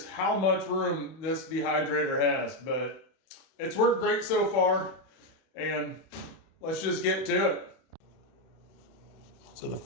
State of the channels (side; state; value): right; late; 31 ms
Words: how much room this dehydrator has. But it's worked great so far. And let's just get to it. So the